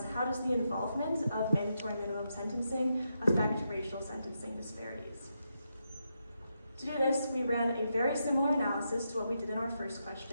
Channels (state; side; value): inverted; both; correlation -0.84